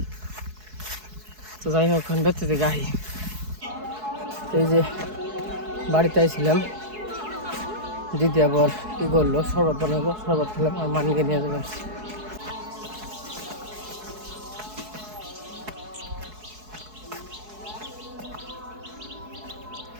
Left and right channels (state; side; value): late; left; 4.7 ms